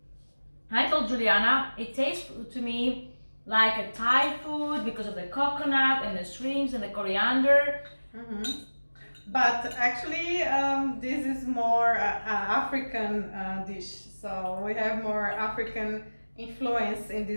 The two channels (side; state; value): both; inverted; correlation -1.00